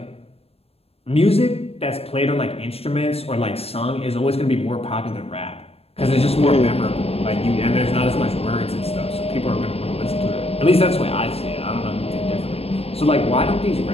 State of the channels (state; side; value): late; right; 0.29 ms